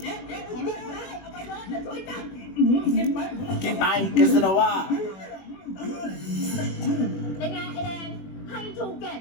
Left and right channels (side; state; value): right; late; 21 ms